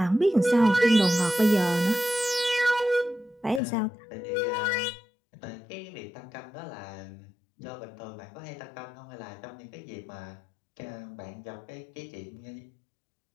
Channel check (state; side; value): drops out; right; at 3.6 s